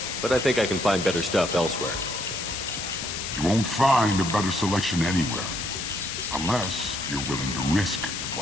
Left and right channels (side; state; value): left; noise; hiss, 5 dB below the sound